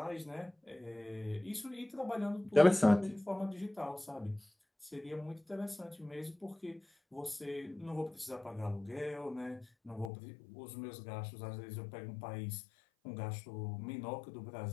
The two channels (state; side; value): drops out; right; at 10.1 s